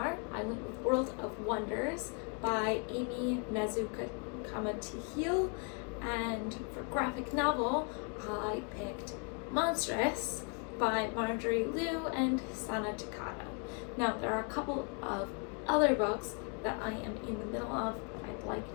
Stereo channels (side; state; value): right; quieter; 35.4 dB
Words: I went with World of Wonders by Amy Comma to Heal. And for graphic novel, I picked Monstrous by Marjorie Liu and Sana Takada. Now, there are a couple of other books that I am in the middle of that I'd like